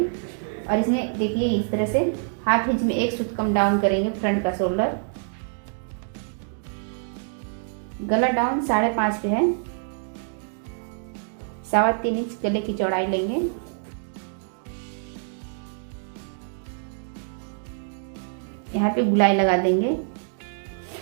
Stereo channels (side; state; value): left; silent; digital silence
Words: और इसमें देखिए इस तरह से ½ इंच में 1 सूत कम डाउन करेंगे फ्रंट का शोल्डर। गला डाउन 5.5 पे है, 3.25 इंच गले की चौड़ाई लेंगे। यहाँ पे गुलाई लगा देंगे,